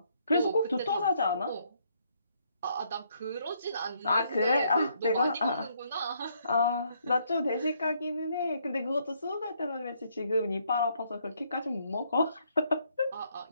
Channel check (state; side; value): inverted; both; correlation -0.71